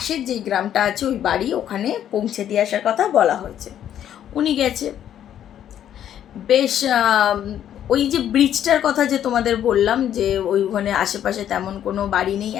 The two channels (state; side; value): quieter; right; 10.4 dB